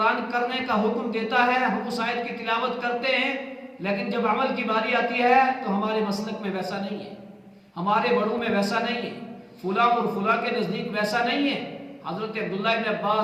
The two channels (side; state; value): both; identical; correlation 1.00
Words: کرنے کا حکم دیتا ہے، ہم اس آیت کی تلاوت کرتے ہیں لیکن جب عمل کی باری آتی ہے تو ہمارے مسلک میں ویسا نہیں ہے، ہمارے بڑوں میں ویسا نہیں ہے، فلاں اور فلاں کے نزدیک ویسا نہیں ہے۔ حضرت عبداللہ ابن